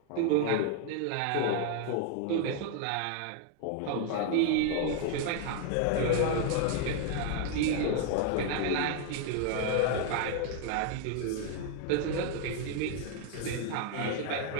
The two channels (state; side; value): different; both; correlation 0.00